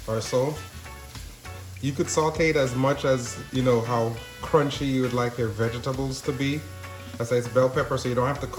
or so. You could saute it as much as, you know, how crunchy you would like your vegetables to be. I say it's bell pepper, so you don't have to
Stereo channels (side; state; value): both; identical; correlation 1.00